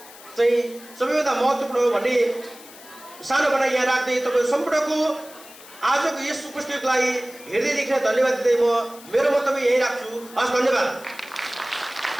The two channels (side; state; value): left; noise; hiss, 19 dB below the sound